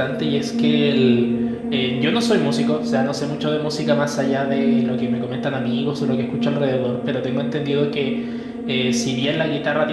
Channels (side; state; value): both; identical; correlation 1.00